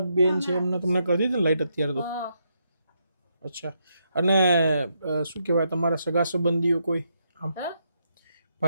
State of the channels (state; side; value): inverted; both; correlation -0.79